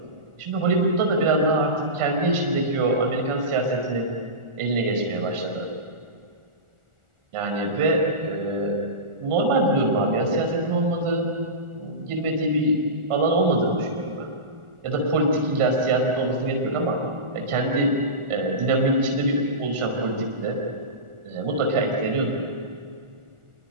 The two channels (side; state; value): left; late; 1.4 ms